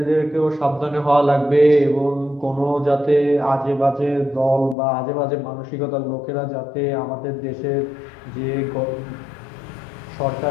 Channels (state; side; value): drops out; right; at 4.8 s